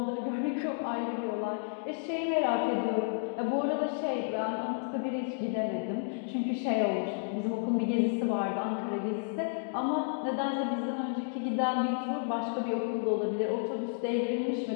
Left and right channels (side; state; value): right; silent; digital silence